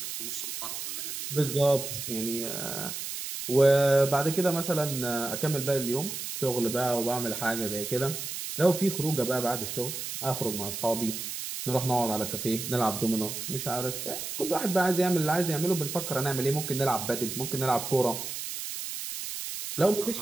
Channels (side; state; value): right; noise; hiss, 6 dB below the sound